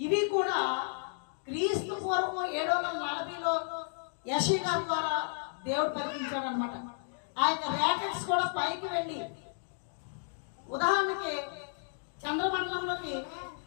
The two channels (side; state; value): right; silent; digital silence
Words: ఇవి కూడా క్రీస్తు పూర్వం 740లో యెషయా ద్వారా దేవుడు పలికించాడు అనమాట. ఆ యొక్క రాకెట్స్ కూడా పైకి వెళ్ళి, ఉదాహరణకి చంద్రమండలంలోకి